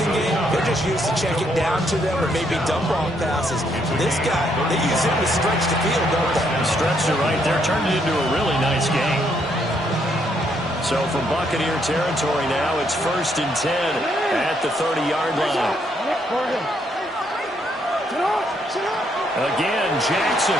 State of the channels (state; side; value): normal; both; correlation 0.73